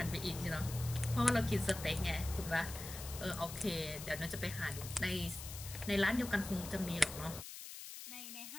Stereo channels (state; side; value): noise; left; hiss, 10 dB below the sound